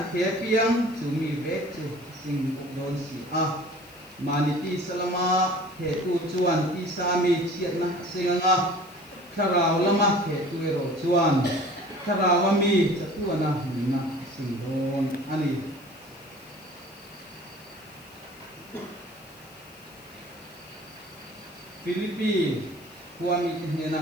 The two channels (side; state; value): left; noise; hiss, 24 dB below the sound